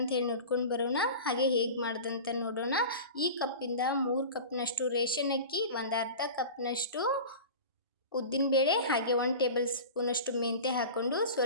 ಹೇಳಿ ನೋಡ್ಕೊಂಡು ಬರೋಣ, ಹಾಗೆ ಹೇಗೆ ಮಾಡೋದಂತ ನೋಡೋಣ. ಈ ಕಪ್ಪಿಂದ 3 ಕಪ್ನಷ್ಟು ರೇಷನ್ ಅಕ್ಕಿ, ಒಂದು ಅರ್ಧ ಕಪ್ನಷ್ಟು ಉದ್ದಿನಬೇಳೆ, ಹಾಗೆ 1 ಟೇಬಲ್ ಸ್ಪೂನಷ್ಟು ಮೆಂತ್ಯ ಹಾಕ್ಕೊಂಡು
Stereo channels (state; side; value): inverted; both; correlation -0.34